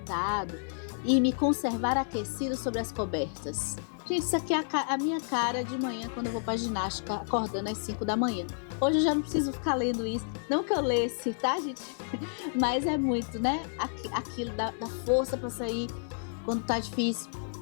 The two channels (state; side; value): silent; right; digital silence